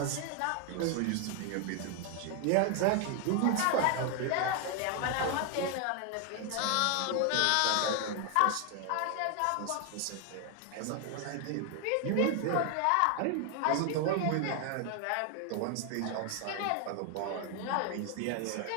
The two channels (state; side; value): different; both; correlation 0.00